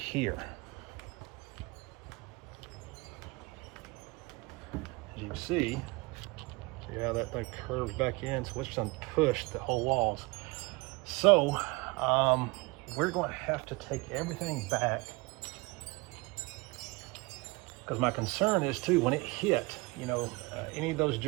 As you can see how that thing curves back in, so it's done pushed the whole walls. So we're going to have to take everything back, because my concern is too, when it hit, any of those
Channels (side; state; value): left; quieter; 25.4 dB